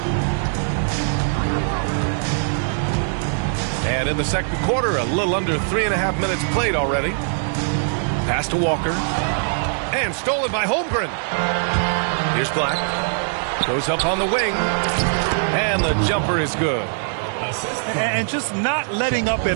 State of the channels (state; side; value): silent; left; digital silence